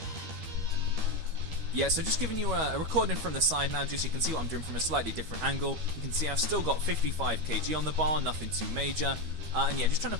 Yeah, so just giving you a recording from the side now, just so you can see what I'm doing from a slightly different angle. You can see I've still got 55 kg on the bar, nothing too major. And yeah, just trying to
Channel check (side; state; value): left; late; 12 ms